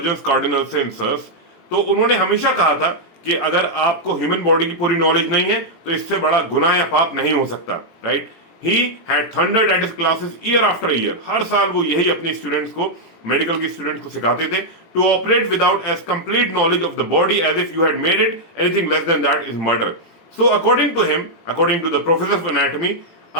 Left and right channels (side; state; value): right; late; 18 ms